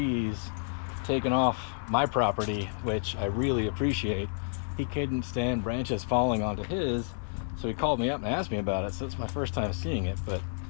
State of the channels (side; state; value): right; silent; 58 dB below the other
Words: taken off my property, which I really appreciate. He couldn't stand branches falling onto his, so he called me up and asked me about it. So it's my first time seeing it, but